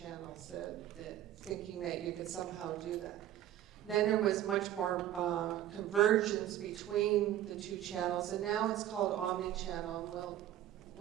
thinking that you could somehow do that. Then there was much more convergence between the two channels, and now it's called omni-channel.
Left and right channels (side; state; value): left; quieter; 12.3 dB